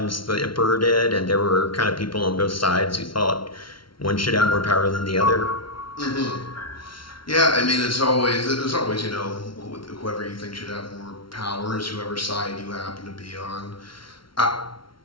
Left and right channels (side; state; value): right; late; 0.74 ms